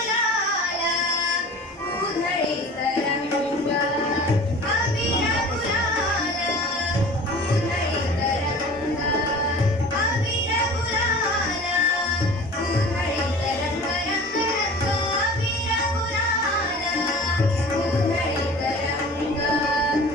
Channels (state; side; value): normal; both; correlation 0.41